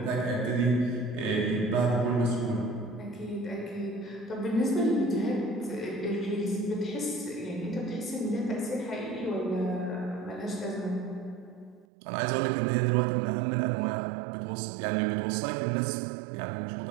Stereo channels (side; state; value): left; drops out; at 11.9 s